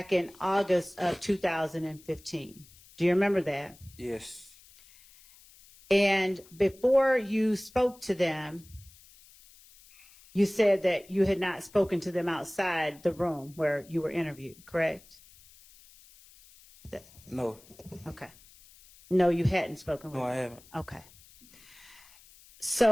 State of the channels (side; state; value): left; noise; hiss, 25 dB below the sound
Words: in August of 2015. Do you remember that? Yes. And before you spoke to them, you said that you had not spoken to them outside the room where you were interviewed, correct? No. Okay. No, you hadn't spoken with No, I them. haven't. Okay.